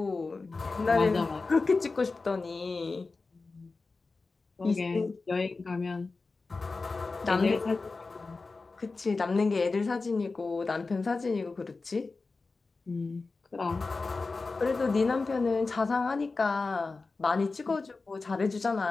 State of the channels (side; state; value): right; quieter; 3.9 dB